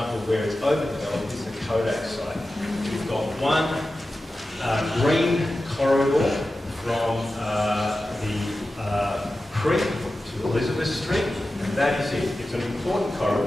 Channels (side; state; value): both; normal; correlation 0.93